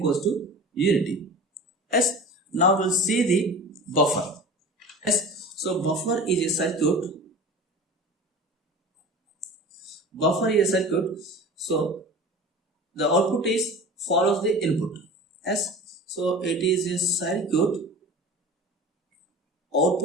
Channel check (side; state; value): both; normal; correlation 0.36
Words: to unity. Yes. Now we'll see the buffer. Yes. So buffer is a circuit. So the output is follows the input. Yes. So it is a circuit.